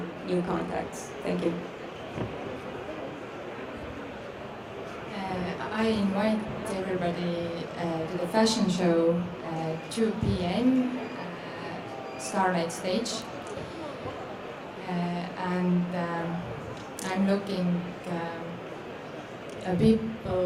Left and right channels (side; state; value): both; identical; correlation 1.00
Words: new contacts. Thank you. I invite everybody to the fashion show 2 p.m. Starlight Stage, and I'm looking